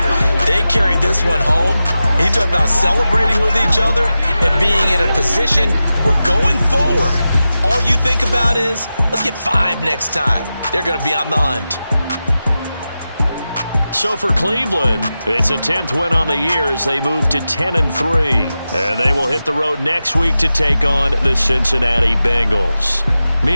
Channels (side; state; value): both; inverted; correlation -0.93